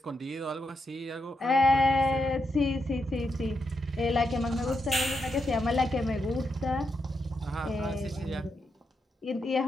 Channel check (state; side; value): normal; both; correlation 0.83